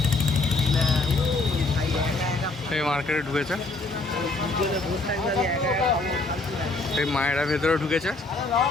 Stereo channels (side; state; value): right; quieter; 3.3 dB